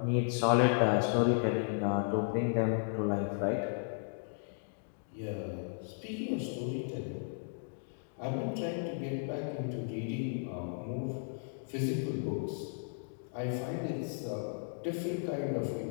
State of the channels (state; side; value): silent; right; digital silence